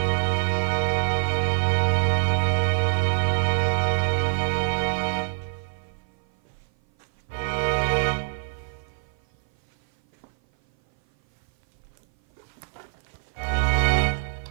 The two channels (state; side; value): silent; left; 57 dB below the other